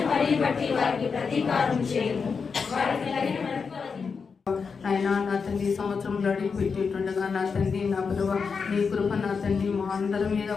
ఆయన నా తండ్రి సంవత్సరంలో అడిగి పెట్టేటుండగా నా తండ్రి నా ప్రభు నీ కృప నా తండ్రి మా అందరి మీద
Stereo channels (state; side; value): quieter; right; 5.4 dB